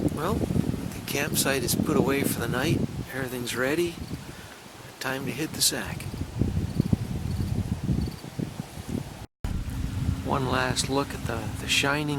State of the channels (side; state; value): both; identical; correlation 1.00